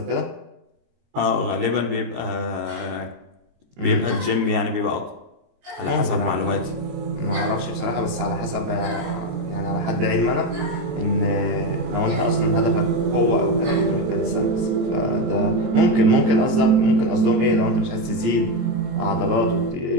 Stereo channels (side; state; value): left; late; 22 ms